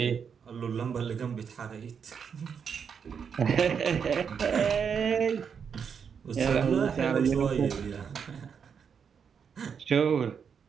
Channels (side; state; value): left; quieter; 6.8 dB